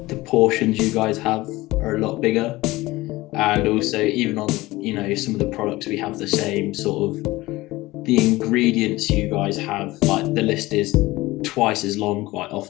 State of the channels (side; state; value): right; quieter; 19.4 dB